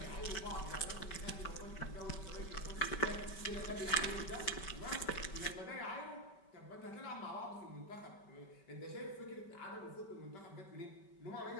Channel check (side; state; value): right; late; 5.2 ms